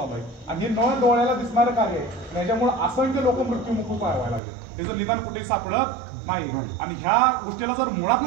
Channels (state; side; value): drops out; left; at 4.4 s